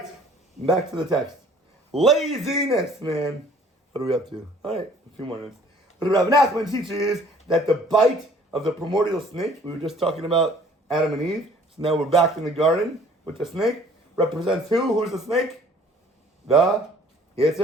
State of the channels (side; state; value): both; normal; correlation 0.55